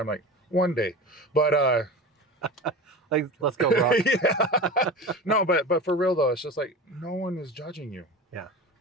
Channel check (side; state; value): both; normal; correlation 0.31